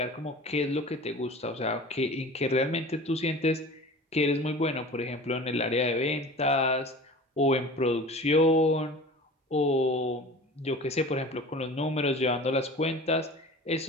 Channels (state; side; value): normal; both; correlation 0.39